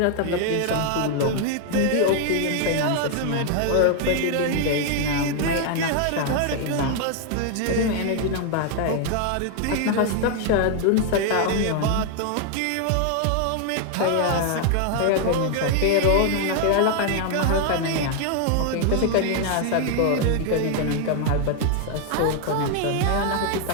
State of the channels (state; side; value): different; both; correlation 0.00